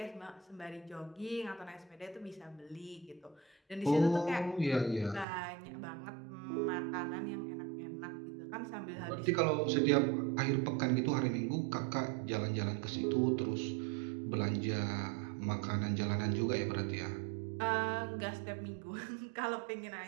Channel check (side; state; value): left; drops out; at 5.2 s